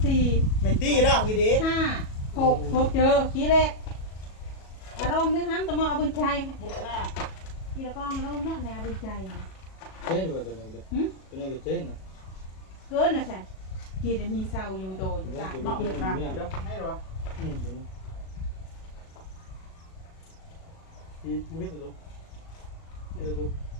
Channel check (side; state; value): right; late; 37 ms